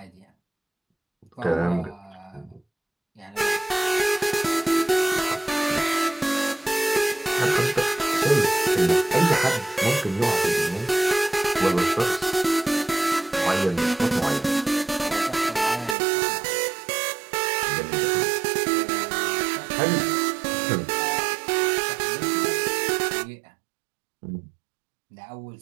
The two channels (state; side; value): drops out; left; at 16.0 s